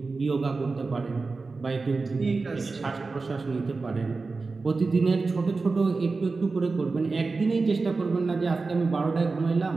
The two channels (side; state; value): left; quieter; 4.0 dB